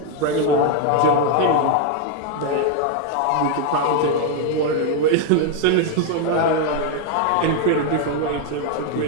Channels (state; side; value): different; both; correlation 0.00